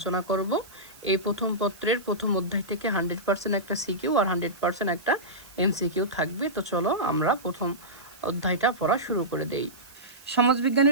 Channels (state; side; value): noise; right; hiss, 22 dB below the sound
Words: করব। এই প্রথম পত্রের প্রথম অধ্যায় থেকে 100% একটা সিকিউ আর 100% একটা এমসিকিউ থাকবে। তো চলো আমরা প্রথম অধ্যায়টা পড়া শুরু করে দেই।